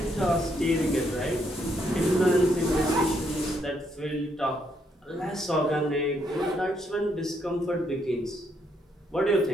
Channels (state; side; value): normal; both; correlation 0.74